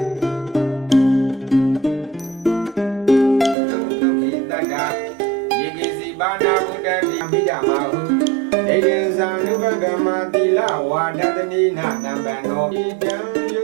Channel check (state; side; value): drops out; left; at 3.6 s